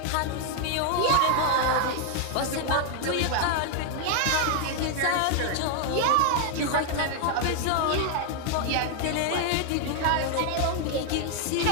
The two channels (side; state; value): both; different; correlation 0.00